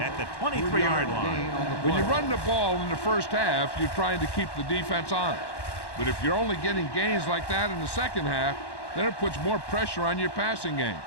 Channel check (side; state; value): right; late; 1.1 ms